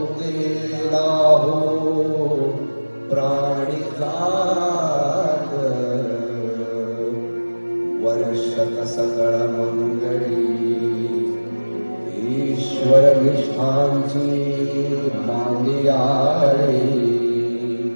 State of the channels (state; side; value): inverted; both; correlation -1.00